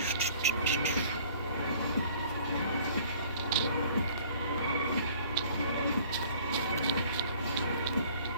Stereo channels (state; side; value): inverted; both; correlation -0.53